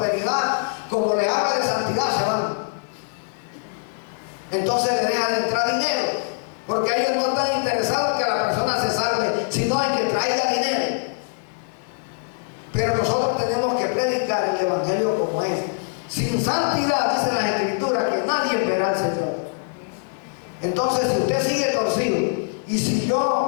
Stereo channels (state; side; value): silent; right; 63 dB below the other